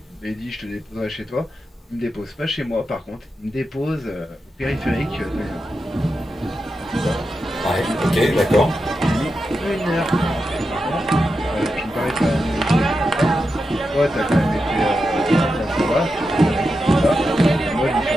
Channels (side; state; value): both; normal; correlation 0.88